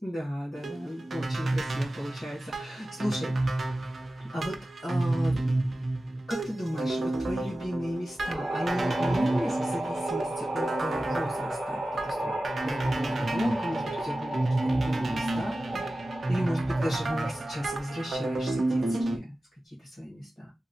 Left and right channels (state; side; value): normal; both; correlation 0.95